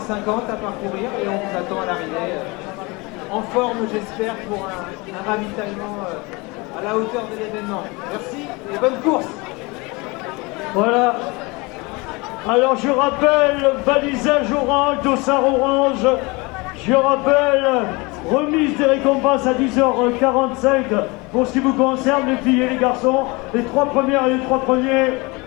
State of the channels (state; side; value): quieter; right; 25.9 dB